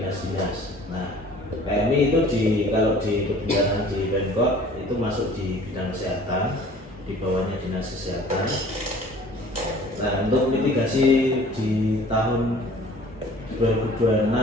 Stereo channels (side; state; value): both; normal; correlation 0.49